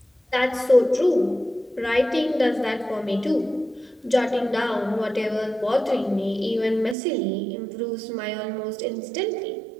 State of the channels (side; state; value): left; drops out; at 7.0 s